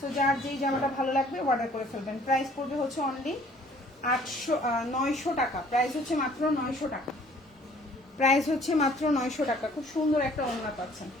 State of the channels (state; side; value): normal; both; correlation 0.56